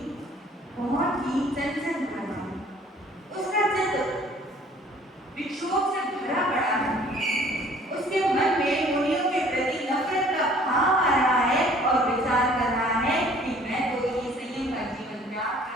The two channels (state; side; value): normal; both; correlation 0.54